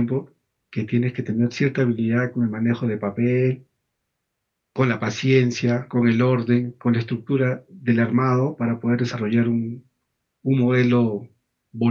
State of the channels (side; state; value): both; identical; correlation 1.00